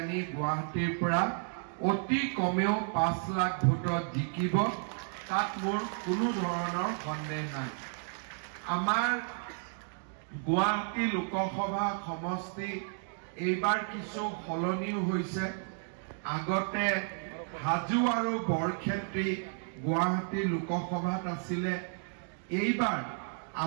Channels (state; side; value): silent; left; 56 dB below the other